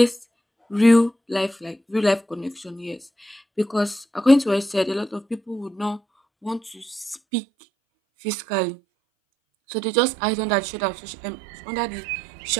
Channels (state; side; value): drops out; left; at 7.2 s